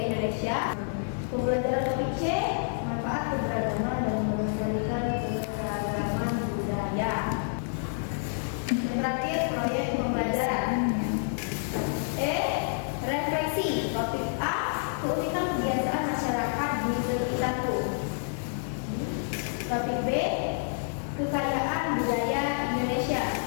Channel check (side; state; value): right; silent; digital silence